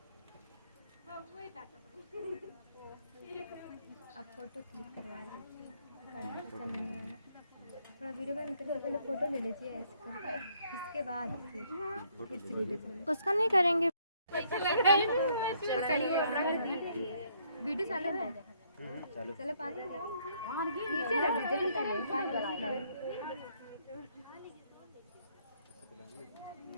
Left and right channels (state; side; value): inverted; both; correlation -0.68